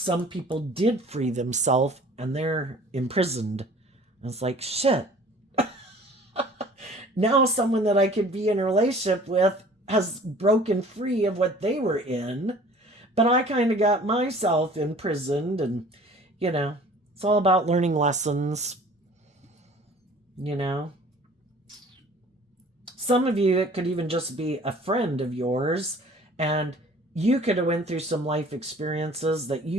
people did free themselves and they're imprisoned. And it's like, shit. Now someone that I could be in a relationship with has broken free of what they were in. But I kind of got myself imprisoned, and, it's all about learning lessons, Some of you, it could even just be a friend of yours, and you could have went through some life experiences that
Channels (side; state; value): both; normal; correlation 0.49